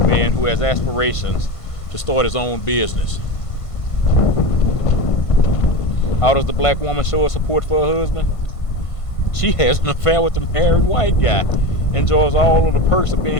who has aspirations to start his own business. How does the black woman show her support for her husband? She has an affair with the married white guy, enjoys all of the perks of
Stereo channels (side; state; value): right; late; 1.5 ms